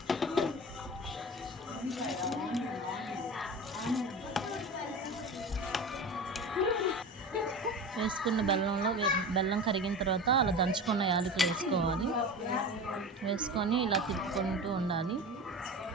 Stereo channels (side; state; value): both; normal; correlation 0.31